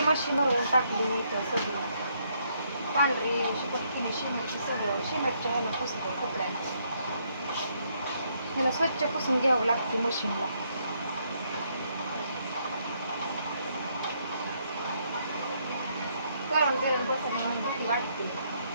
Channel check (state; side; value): inverted; both; correlation -0.72